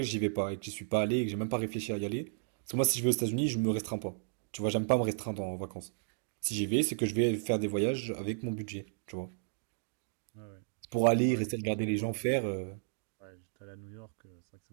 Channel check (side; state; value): left; silent; digital silence